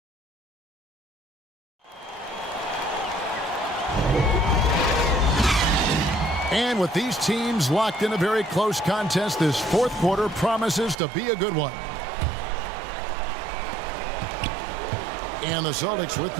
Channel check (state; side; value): drops out; left; at 11.0 s